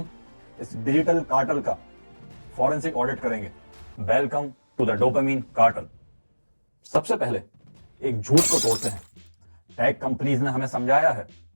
इस डिजिटल कार्टल का फॉरेंसिक ऑडिट करेंगे। Welcome to the dopamine cartel. सबसे पहले एक झूठ को तोड़ते हैं। टेक कंपनीज ने हमें समझाया है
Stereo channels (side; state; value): both; inverted; correlation -1.00